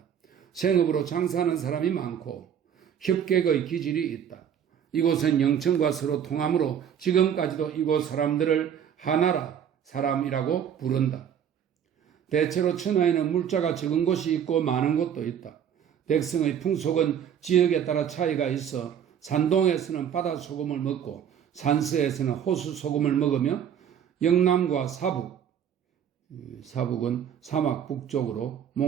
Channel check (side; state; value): left; quieter; 8.8 dB